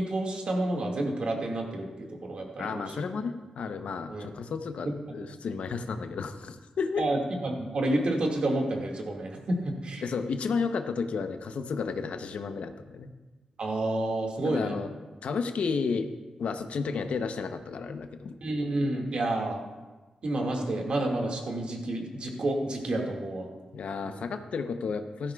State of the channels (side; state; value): both; normal; correlation 0.84